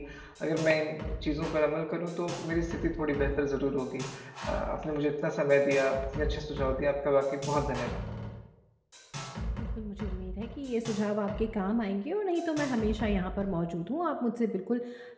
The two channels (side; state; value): both; identical; correlation 1.00